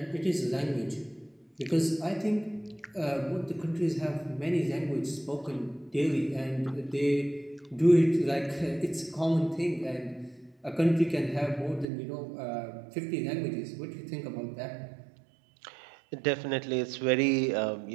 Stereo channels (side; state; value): left; drops out; at 11.9 s